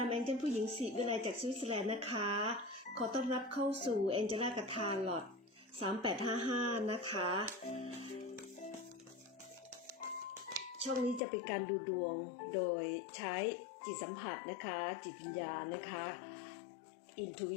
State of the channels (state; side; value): drops out; right; at 11.2 s